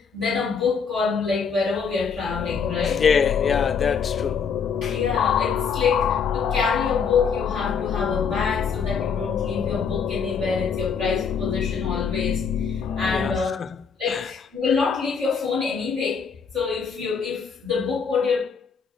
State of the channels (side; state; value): right; quieter; 6.1 dB